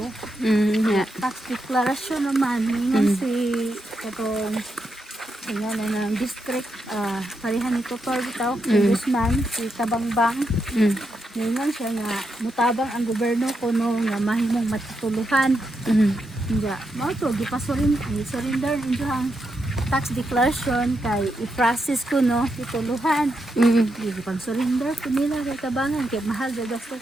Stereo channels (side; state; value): both; normal; correlation 0.83